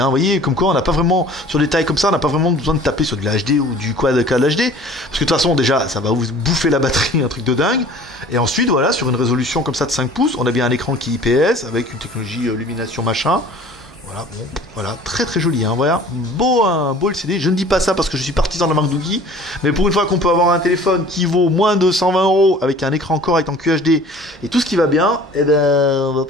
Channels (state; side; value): normal; both; correlation 0.48